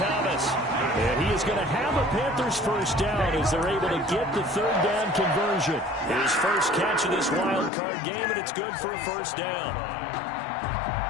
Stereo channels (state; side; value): drops out; right; at 7.7 s